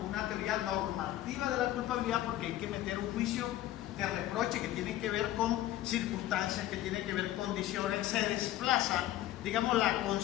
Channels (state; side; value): quieter; right; 14.2 dB